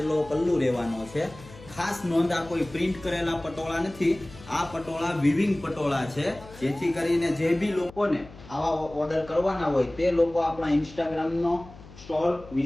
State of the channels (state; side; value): noise; left; hum, 19 dB below the sound